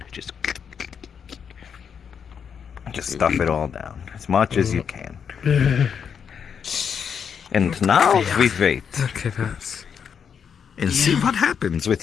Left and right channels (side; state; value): right; quieter; 7.2 dB